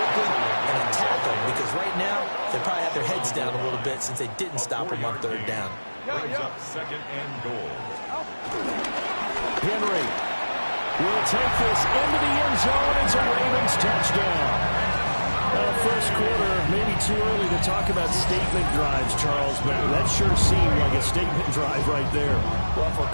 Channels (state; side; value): inverted; both; correlation -1.00